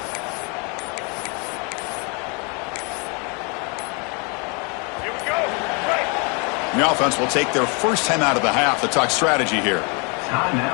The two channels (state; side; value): quieter; right; 33.6 dB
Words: Here we go. Right. The offense will take their first time out of the half to talk strategy here.